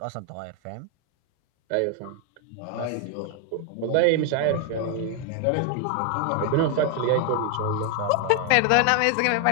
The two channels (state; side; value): different; both; correlation 0.01